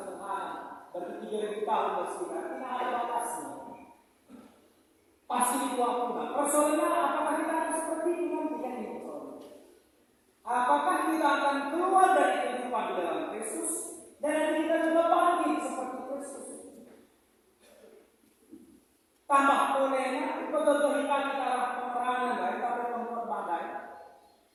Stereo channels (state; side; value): identical; both; correlation 1.00